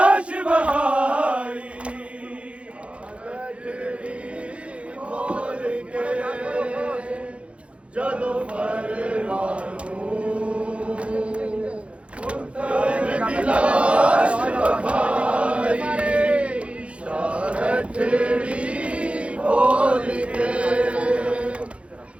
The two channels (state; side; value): late; left; 0.061 ms